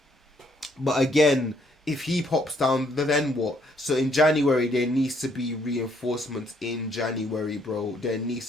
But again, if he pops down, then what? So in January, there needs to be reinforcements in January, bro. There needs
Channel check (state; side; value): normal; both; correlation 0.69